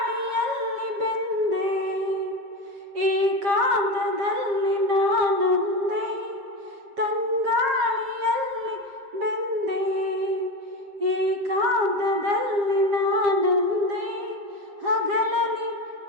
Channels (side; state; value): left; late; 7.4 ms